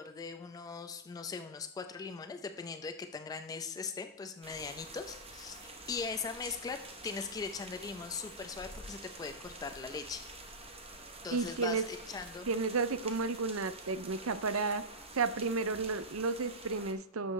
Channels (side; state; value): both; normal; correlation -0.13